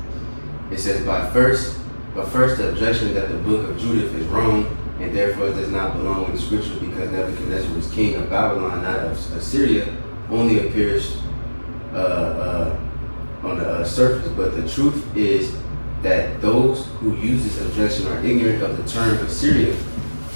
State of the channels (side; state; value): both; inverted; correlation -1.00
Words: It says, but first the objection that the book of Judith is wrong and therefore does not belong in the scripture because Nebuchadnezzar was king of Babylon, not of Assyria, only appears on the surface. But the truth is that those who use this objection are ignorant of the term Assyria